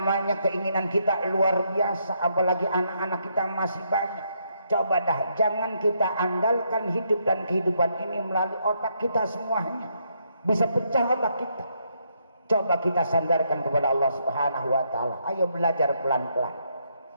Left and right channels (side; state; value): both; inverted; correlation -0.76